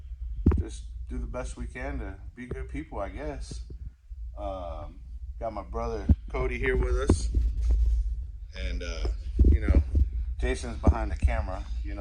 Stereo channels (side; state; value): both; identical; correlation 1.00